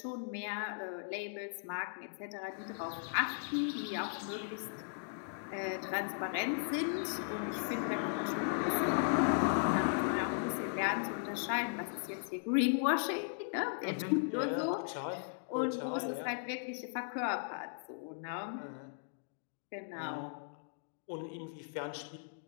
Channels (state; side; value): silent; right; digital silence